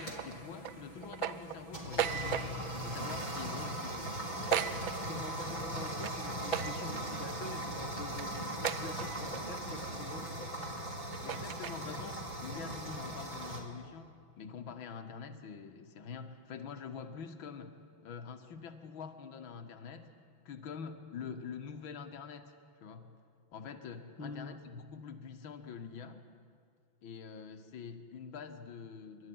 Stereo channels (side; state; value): right; late; 6.1 ms